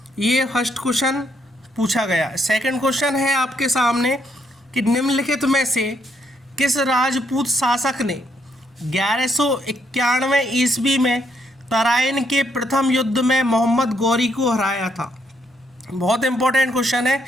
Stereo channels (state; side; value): normal; both; correlation 0.74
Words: ये फर्स्ट क्वेश्चन पूछा गया। सेकंड क्वेश्चन है आपके सामने कि निम्नलिखित में से किस राजपूत शासक ने 1191 ईस्वी में तराइन के प्रथम युद्ध में मोहम्मद गौरी को हराया था। बहुत इंपॉर्टेंट क्वेश्चन है